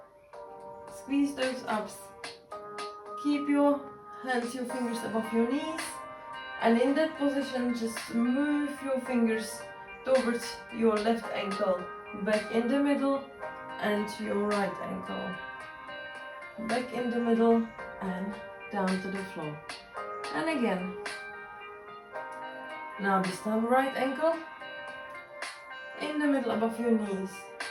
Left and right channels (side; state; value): both; identical; correlation 1.00